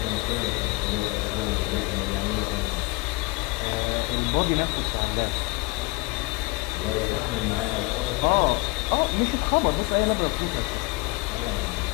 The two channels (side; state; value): right; quieter; 25.8 dB